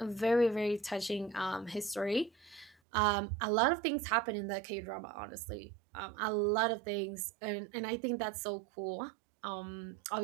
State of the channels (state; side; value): drops out; left; at 2.8 s